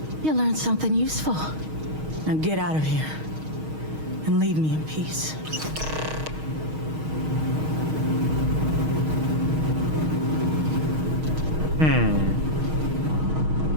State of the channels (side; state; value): left; late; 6.4 ms